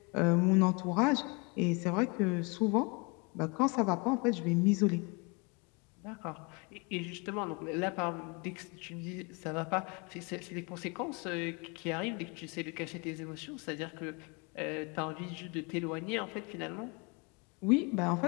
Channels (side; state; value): right; quieter; 30.0 dB